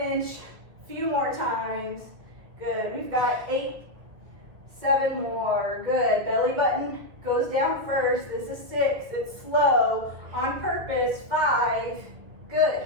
A few more times. Good, we've got 8, 7 more, good. Belly button goes down first, this is 6, it's slow, on purpose, 5, good.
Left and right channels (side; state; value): left; late; 2.4 ms